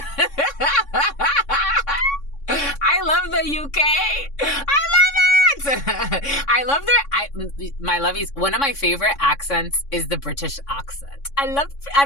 I love the UK. I love it. I love my lovies. One of my favorite accents is the British accent. I'm not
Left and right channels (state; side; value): late; right; 3.6 ms